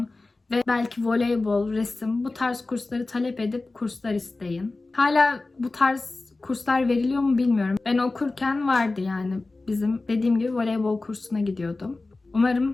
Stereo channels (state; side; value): quieter; right; 3.3 dB